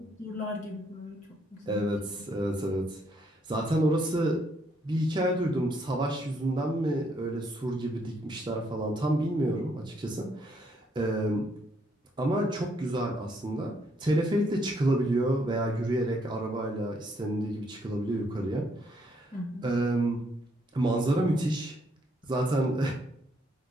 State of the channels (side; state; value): both; normal; correlation 0.71